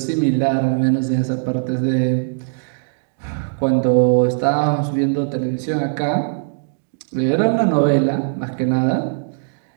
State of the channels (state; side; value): silent; left; digital silence